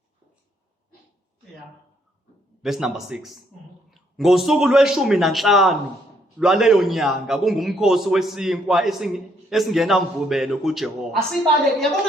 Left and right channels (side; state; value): both; normal; correlation 0.70